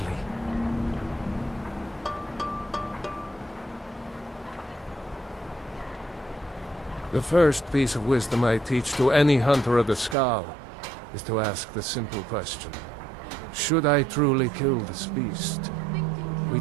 The first piece of wisdom I teach to any hunter of the Skal is to ask the simple question: should I truly kill this beast? We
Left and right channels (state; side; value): drops out; left; at 10.2 s